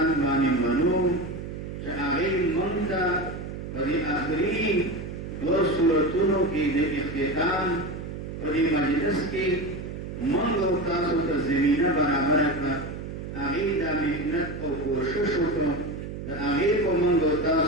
باندې منو چې هغې موږ ته په دې آخري دوه صورتونو کې د اختتام په دې مجلس کې موږ او تاسو ته زمینه برابره کړه هغې دا محنت او کوشش وکړو د هغې په موږ او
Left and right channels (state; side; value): noise; right; hum, 8 dB below the sound